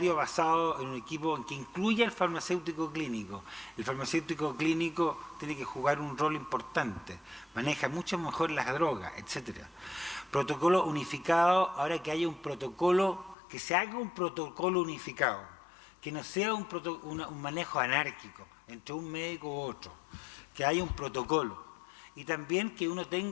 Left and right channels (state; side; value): drops out; right; at 13.4 s